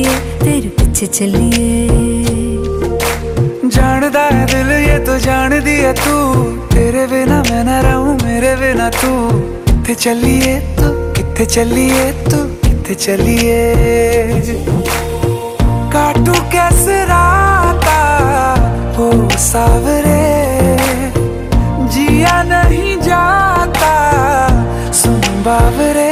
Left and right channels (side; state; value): both; identical; correlation 1.00